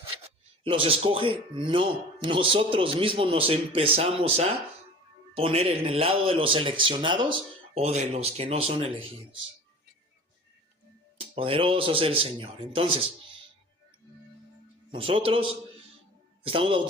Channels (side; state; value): both; normal; correlation 0.41